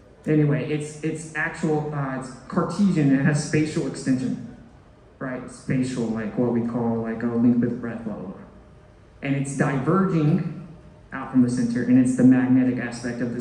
anyway, it's Cartesian, it has spatial extension, right? Spatial, like what we call like a length with breadth, blah, blah, blah. And it's diverging out out from the center, and it's the magnetic aspect of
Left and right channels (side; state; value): both; identical; correlation 1.00